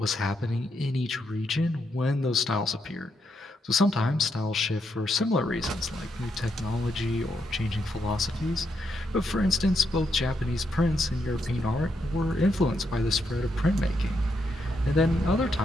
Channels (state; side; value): normal; both; correlation 0.80